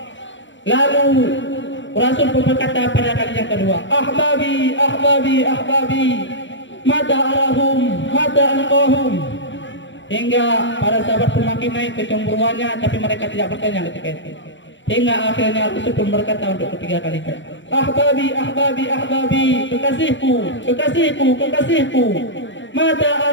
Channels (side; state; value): right; late; 0.54 ms